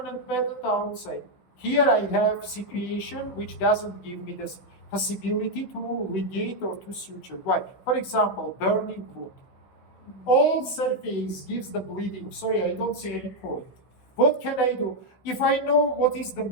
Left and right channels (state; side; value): late; right; 16 ms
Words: method outside? Here I have situation which doesn't give me the possibility to ligate or to suture. Why? For example, burning wound. All surface gives the bleeding. Sorry, I don't see any point. What can I do? If I know what is the